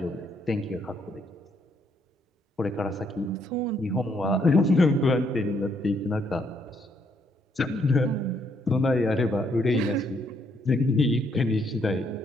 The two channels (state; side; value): normal; both; correlation 0.72